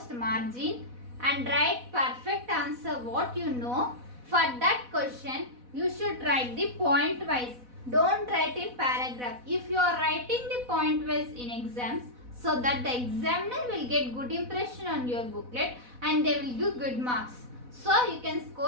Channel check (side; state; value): left; late; 4.1 ms